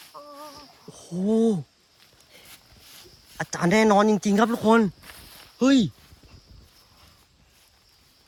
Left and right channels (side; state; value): both; identical; correlation 1.00